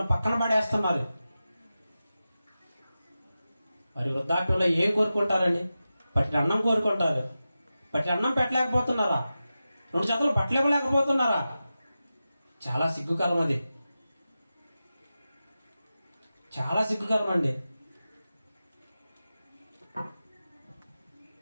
పక్కన పడేస్తున్నారు. మరి వృద్ధాప్యంలో ఏం కోరుకుంటారండి? పట్టి అన్నం కోరుకుంటారు. పట్టి అన్నం పెట్టలేకపోతున్నారా? 2 జతలు బట్టలు ఇవ్వలేకపోతున్నారా? చాలా సిగ్గుకరం అది, చాలా సిగ్గుకరం అండి.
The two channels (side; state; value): both; inverted; correlation -0.93